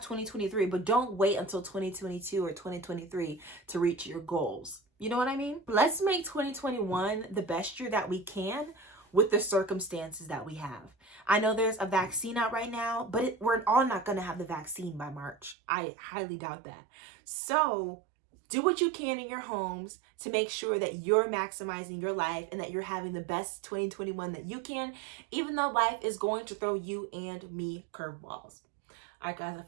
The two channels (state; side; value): drops out; left; at 15.6 s